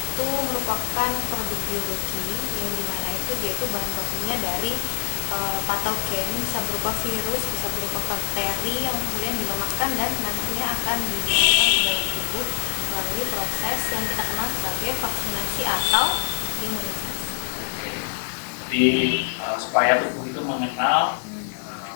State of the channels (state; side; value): silent; right; digital silence